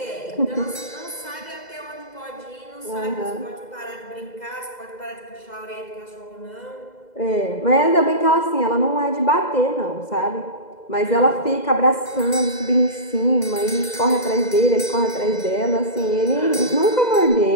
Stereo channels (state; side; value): late; right; 2.0 ms